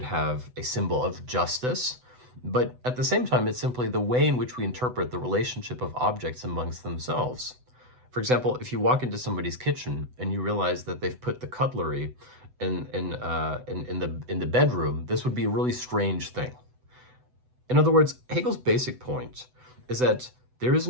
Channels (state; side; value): late; left; 8.0 ms